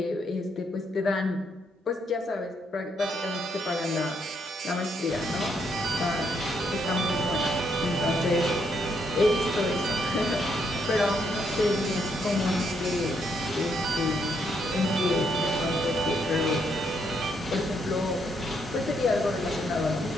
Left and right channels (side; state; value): both; normal; correlation 0.75